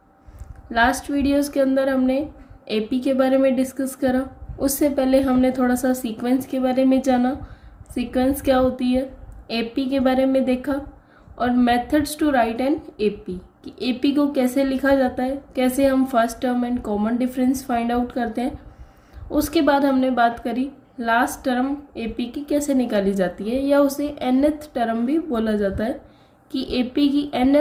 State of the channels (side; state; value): both; identical; correlation 1.00